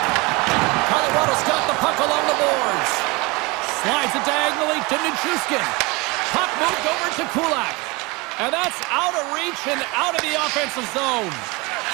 Colorado's got the puck along the boards. Slides it diagonally to Nichushkin. Puck moved over to Kulak. And that's out of reach and out of the offensive zone.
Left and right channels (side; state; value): left; quieter; 25.6 dB